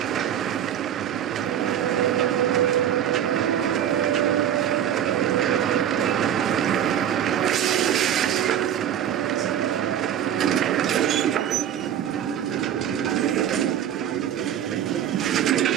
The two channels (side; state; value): left; quieter; 10.1 dB